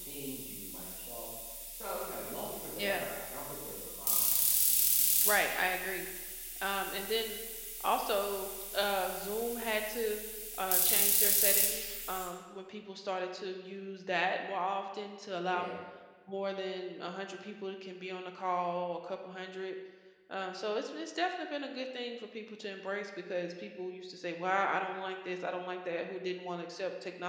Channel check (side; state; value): both; identical; correlation 1.00